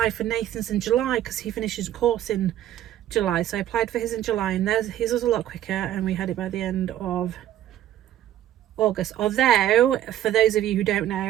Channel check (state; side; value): quieter; left; 12.2 dB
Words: for Nathan's in July, because he finishes a course in July, so I applied for his in July, and his was a lot quicker, and we had it by the end of August. Although, for those of you who don't